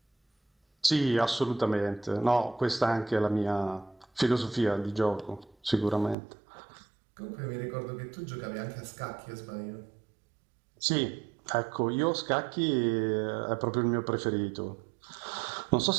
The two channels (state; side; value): drops out; left; at 6.2 s